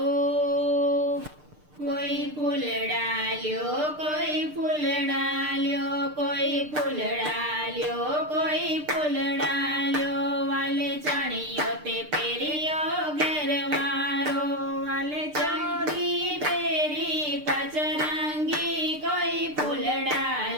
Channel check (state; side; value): late; left; 6.7 ms